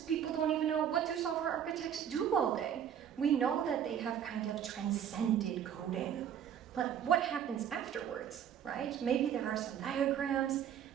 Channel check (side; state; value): left; quieter; 9.1 dB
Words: people don't even know what do software architects do all day. We know that they have kind of transcended coding, but what happens afterwards, right? Maybe there are some diagrams,